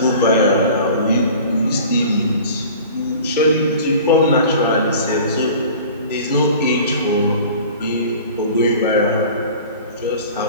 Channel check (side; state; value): both; inverted; correlation -0.42